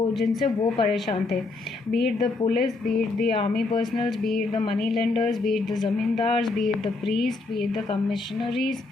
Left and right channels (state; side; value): quieter; right; 3.5 dB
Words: जिनसे वो परेशान थे. Beat the police, beat the army personnels, beat the money lenders, beat the zamindars, beat the priest, beat the commissionaries,